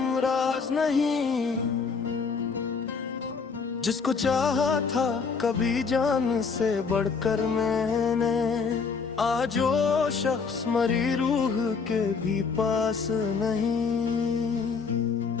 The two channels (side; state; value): right; quieter; 5.2 dB